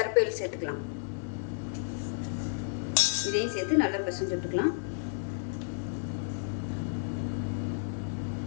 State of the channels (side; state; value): right; silent; digital silence